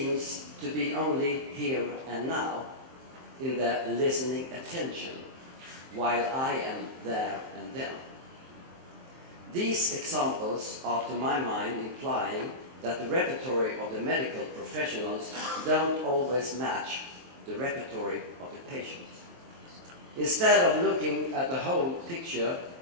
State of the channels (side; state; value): left; late; 23 ms